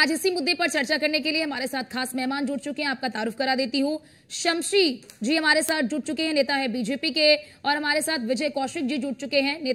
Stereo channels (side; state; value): both; identical; correlation 1.00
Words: इसी मुद्दे पर चर्चा करने के लिए हमारे साथ खास मेहमान जुड़ चुके हैं। आपका तारुफ करा देती हूँ, शमशी जी हमारे साथ जुड़ चुके हैं, नेता है बीजेपी के, और हमारे साथ विजय कौशिक जी जुड़ चुके हैं,